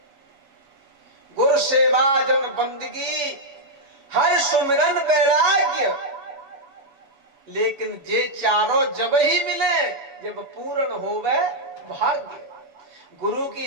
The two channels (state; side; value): late; left; 7.2 ms